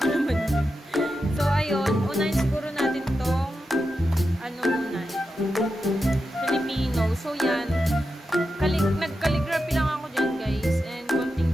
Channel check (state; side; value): normal; both; correlation 0.89